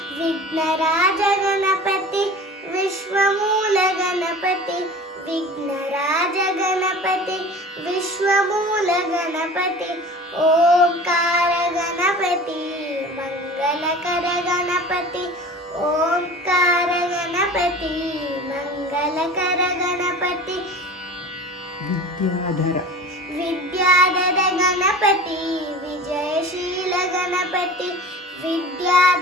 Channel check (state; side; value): normal; both; correlation 0.38